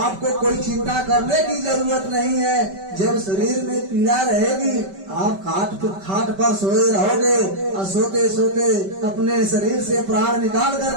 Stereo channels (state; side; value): late; left; 5.2 ms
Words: कोई चिंता करने की जरूरत नहीं है। जब शरीर में पीड़ा रहेगी, आप खाट पर सोए रहोगे और सोते सोते अपने शरीर से प्राण निकाल